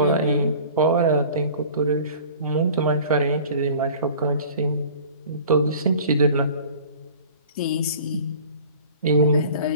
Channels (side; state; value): both; inverted; correlation -0.45